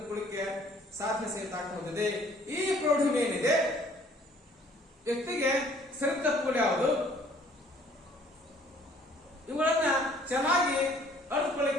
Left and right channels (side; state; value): both; normal; correlation 0.58